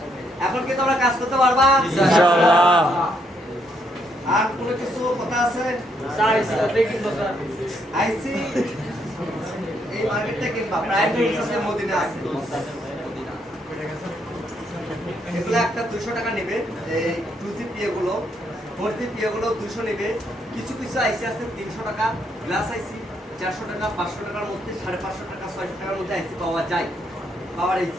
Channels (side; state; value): both; normal; correlation 0.74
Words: এখন কি তোমরা কাজ করতে পারবা ইনশাআল্লাহ আর কোনো কিছু কথা আছে স্যার দেখি তো স্যার আইসি এই মার্কেটটা কিনবা প্রাইম সিস্টেম মদিনা আছে এগুলো একটা 200 টাকা নেবে এই 2G PA গুলো 4G PA গুলো 200 নেবে কিছু কিছু আইসি আছে 300 টাকা গ্লাস আইসি 400 টাকা 500 টাকার মধ্যে 550 টাকা 600 টাকার মধ্যে আইসি পাওয়া যায় পাওয়ার